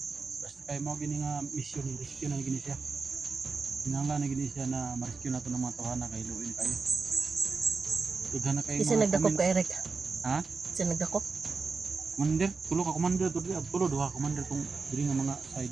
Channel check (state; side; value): quieter; left; 4.5 dB